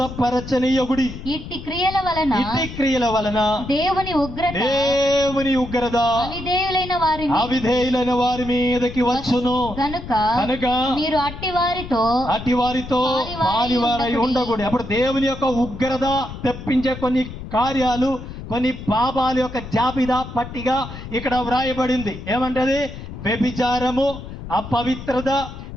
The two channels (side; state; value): left; noise; rumble, 11 dB below the sound